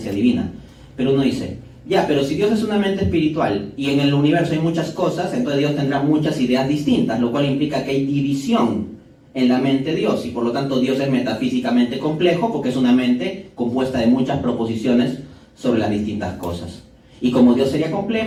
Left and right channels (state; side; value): identical; both; correlation 1.00